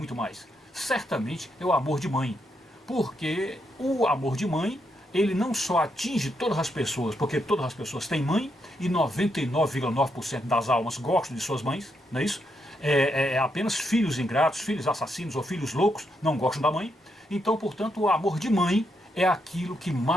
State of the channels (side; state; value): both; normal; correlation 0.80